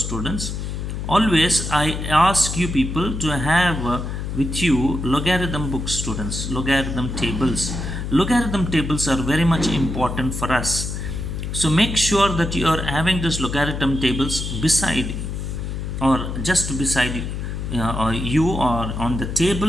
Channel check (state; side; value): noise; left; hum, 5 dB below the sound